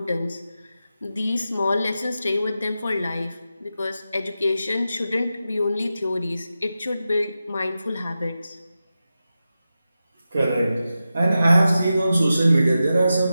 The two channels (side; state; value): both; inverted; correlation -0.91